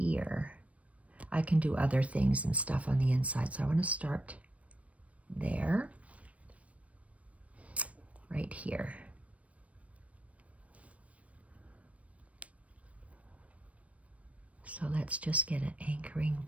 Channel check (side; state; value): left; late; 0.065 ms